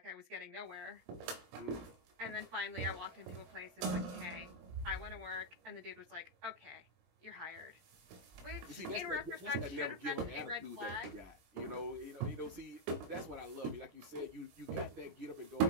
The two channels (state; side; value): late; left; 17 ms